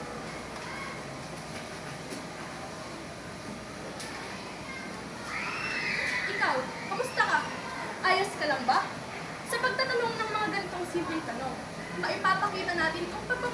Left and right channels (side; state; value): both; identical; correlation 1.00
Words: Ikaw, kamusta ka? Ayos ka lang ba? Sa pagtatanong ng mga ganitong simpleng tanong, maipapakita natin ang